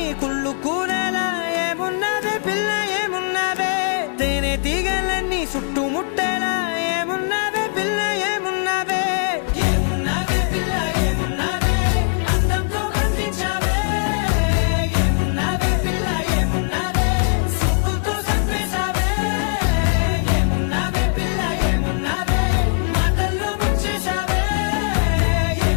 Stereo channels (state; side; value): silent; right; 65 dB below the other